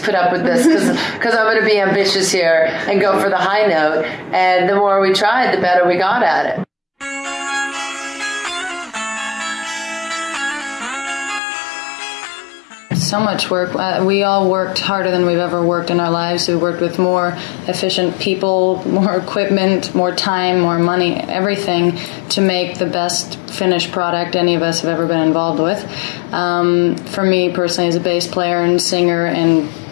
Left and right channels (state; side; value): drops out; right; at 11.4 s